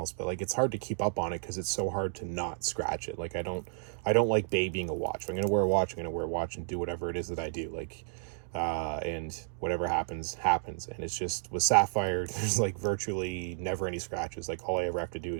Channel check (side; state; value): left; silent; digital silence